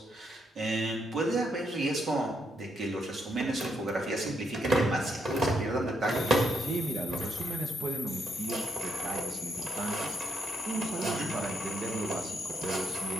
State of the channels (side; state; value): both; normal; correlation 0.77